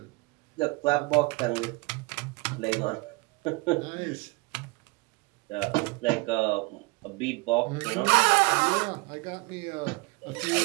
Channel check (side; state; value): left; quieter; 26.3 dB